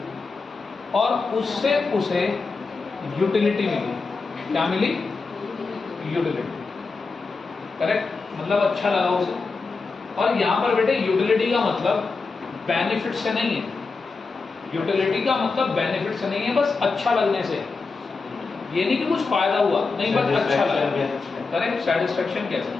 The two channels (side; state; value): right; quieter; 4.3 dB